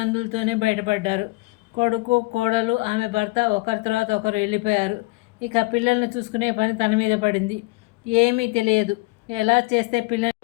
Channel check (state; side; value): quieter; right; 23.6 dB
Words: బయటపడ్డారు. కొడుకు, కోడలు, ఆమె భర్త ఒకరి తర్వాత ఒకరు వెళ్ళిపోయారు. ఇక పిల్లల్ని చూసుకునే పని తన మీద పడింది. ఏమీ తెలియదు. ఎలా చేస్తే